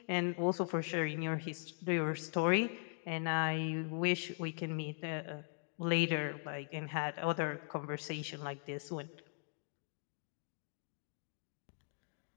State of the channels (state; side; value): silent; right; 51 dB below the other